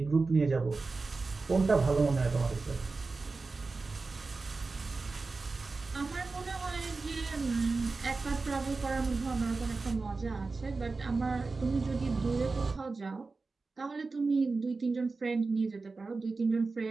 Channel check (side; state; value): left; quieter; 3.9 dB